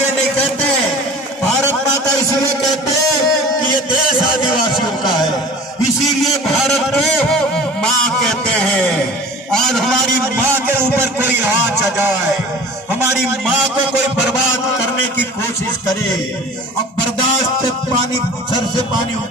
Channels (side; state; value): both; normal; correlation 0.41